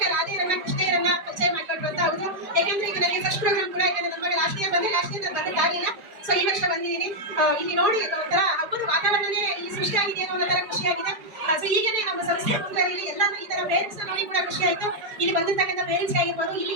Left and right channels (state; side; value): late; left; 4.6 ms